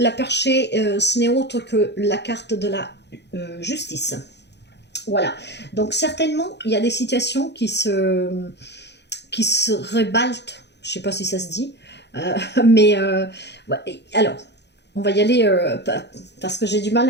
perchée, ce n'est autre que la carte de la justice. Voilà, donc certainement, il y a des situations qui se rebalte, je ne sais pas si ça se dit, mais ouais, alors, on va y aller parce que j'ai du mal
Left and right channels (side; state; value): right; late; 0.50 ms